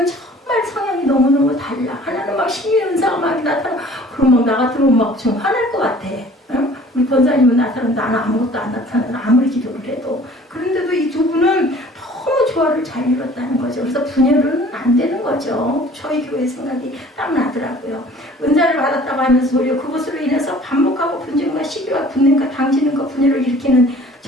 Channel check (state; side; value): normal; both; correlation 0.50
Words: 정말 성향이 너무너무 달라. 하나는 막 신유의 은사가 막 나타나. 그럼 막 나 같으면 막 좀 화날 것 같아. 응? 우리 권사님은 나타나면 나는 아무것도 안 나타나. 아무리 기도를 해도. 그런데도 이 두 분은 너무 조화를 잘 이뤘다는 거죠. 그래서 분열은 안 되는 거죠. 저희 교회 생각이 딱 나더라고요. 은사를 받았다고 하면서 오히려 그것으로 인해서 반복하고 분쟁과 시기와 분냄과 당지는 것 분열을 일으키는